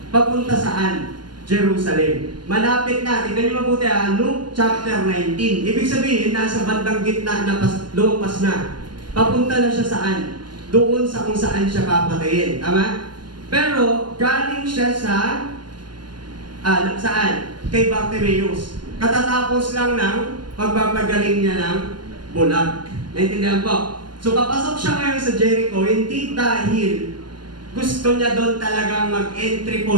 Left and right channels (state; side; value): late; left; 0.71 ms